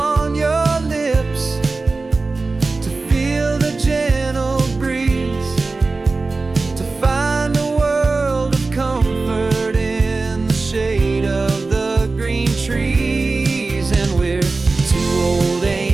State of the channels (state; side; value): quieter; left; 3.7 dB